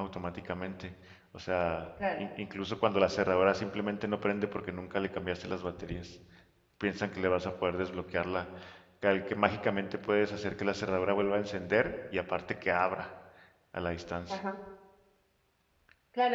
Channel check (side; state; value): both; identical; correlation 1.00